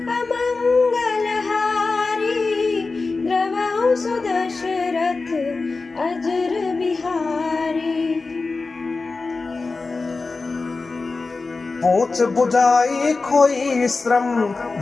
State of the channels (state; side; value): quieter; right; 3.9 dB